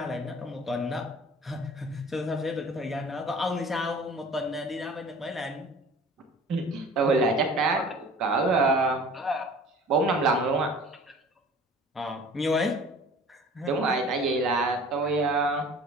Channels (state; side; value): normal; both; correlation 0.45